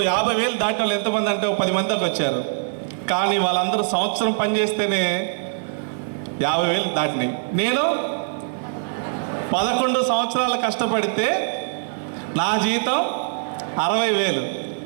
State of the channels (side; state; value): left; silent; 55 dB below the other